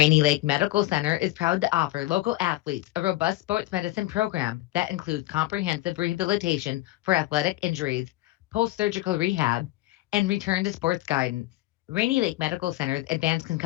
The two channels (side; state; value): right; quieter; 17.6 dB